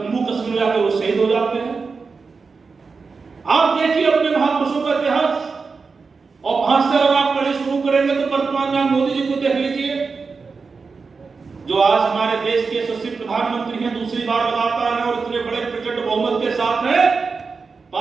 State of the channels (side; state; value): left; quieter; 4.7 dB